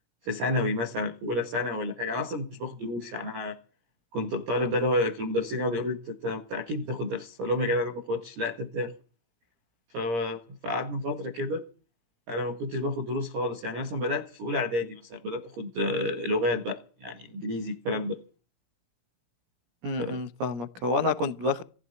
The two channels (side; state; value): left; late; 17 ms